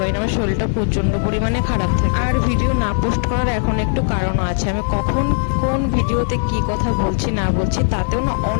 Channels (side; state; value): right; silent; digital silence